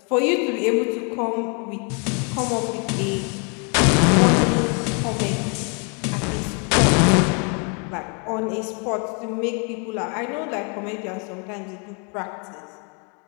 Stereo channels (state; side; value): quieter; right; 36.7 dB